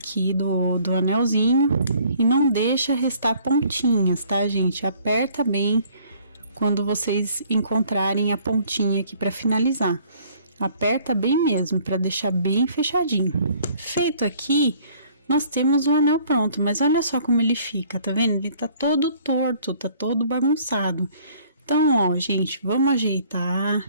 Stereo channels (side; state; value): both; inverted; correlation -0.58